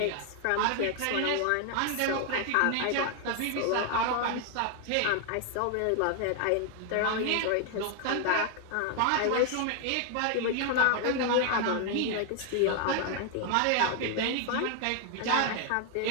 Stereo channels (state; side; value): different; both; correlation 0.00